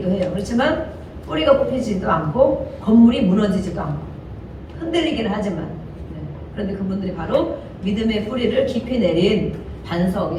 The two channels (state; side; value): identical; both; correlation 1.00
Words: 해요. 그렇지만 뿌리가 뽑히지도 않고 건물이 무너지지도 않고 흔들리기는 하지만 그런데 그분들이 바로 믿음의 뿌리를 깊이 내린